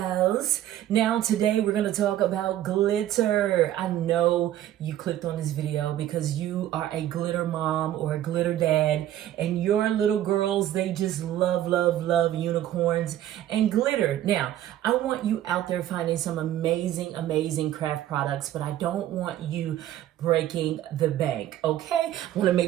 Now, today we're going to talk about glitter. I know you clicked on this video because you are a glitter mom or a glitter dad, and your little girls, they just love, love, love unicorns and glitter. Now, I want you out there finding some amazing, amazing craft products, but I don't want you breaking the bank, okay? I want to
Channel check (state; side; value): quieter; left; 12.5 dB